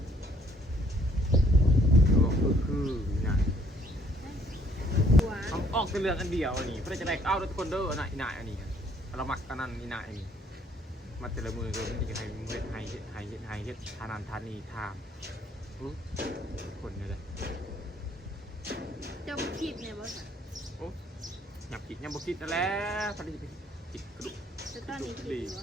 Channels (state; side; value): normal; both; correlation 0.63